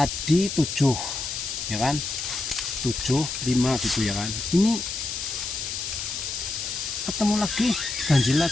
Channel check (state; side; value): noise; left; hiss, 4 dB below the sound